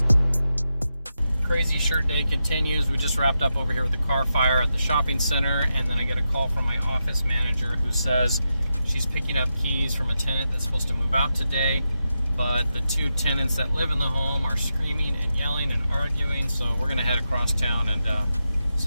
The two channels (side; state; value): both; inverted; correlation -0.87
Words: Crazy shirt day continues. We just wrapped up over here with the car fire at the shopping center, and then I get a call from my office manager who says she's picking up keys from a tenant that's supposed to move out today, but the two tenants that live in the home are screaming and yelling and arguing, so we're gonna head across town and